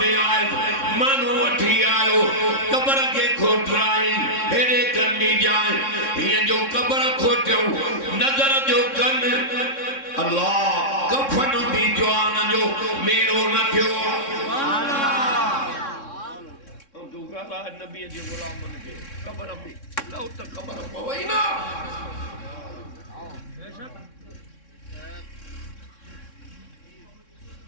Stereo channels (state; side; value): late; right; 3.6 ms